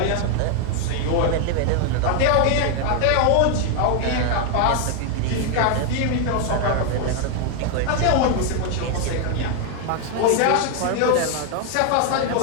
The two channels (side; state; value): both; different; correlation 0.00